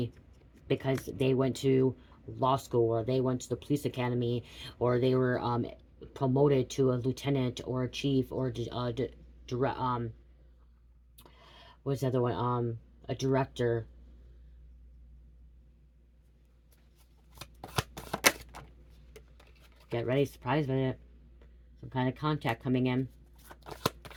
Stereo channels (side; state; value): both; identical; correlation 1.00